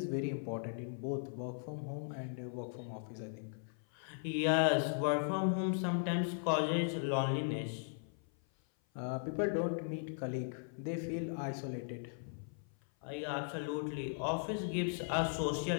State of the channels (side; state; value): right; silent; 52 dB below the other